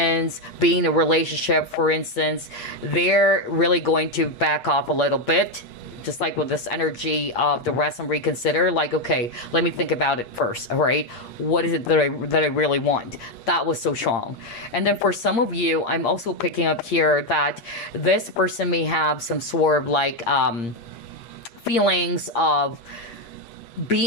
being in a relationship, for instance, they're really going to back off a little bit. Just like with this energy of the rest and reconsider, like, okay, let me think about it first, all right? What is it that I really want? That was so strong. And then for some of you, I'm also picking up here that this person may have some sort of like feelings of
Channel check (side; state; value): right; late; 8.6 ms